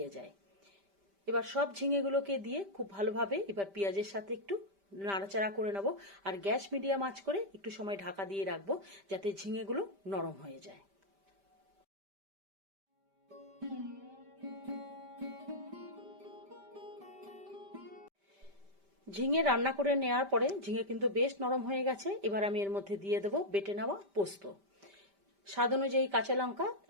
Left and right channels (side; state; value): left; late; 5.1 ms